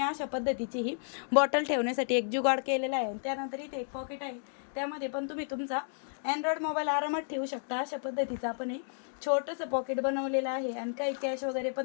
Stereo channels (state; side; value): silent; right; digital silence